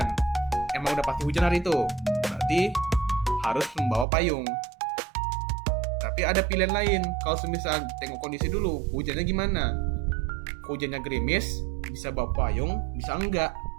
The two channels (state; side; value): drops out; left; at 4.0 s